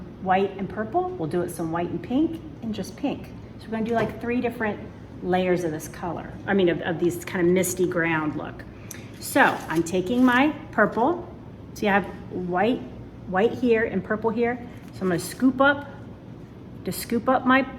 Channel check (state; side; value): identical; both; correlation 1.00